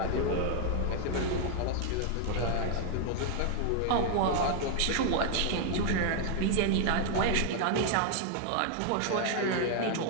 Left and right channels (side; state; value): both; different; correlation 0.00